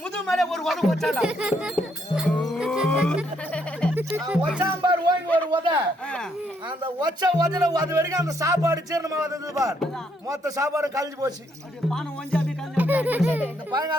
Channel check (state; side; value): normal; both; correlation 0.72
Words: மேல ஒரு உதவு வச்சாண்டா. ஒச்சாம்பார் ஓங்கி ஒரு உத. அந்த ஒச்ச உதல அது வரைக்கும் அந்த சாப்பாடு ஜீரணமா வந்தது பார். மொத்த சாப்பாடு கழிஞ்சு போச்சு. இந்த